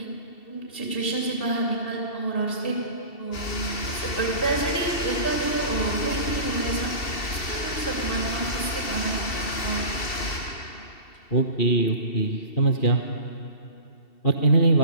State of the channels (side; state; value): right; late; 2.7 ms